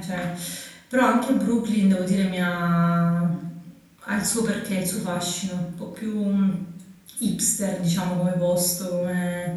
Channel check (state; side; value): identical; both; correlation 1.00